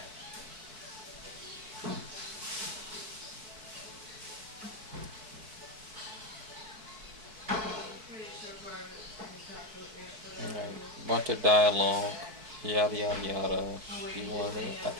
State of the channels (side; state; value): left; late; 4.6 ms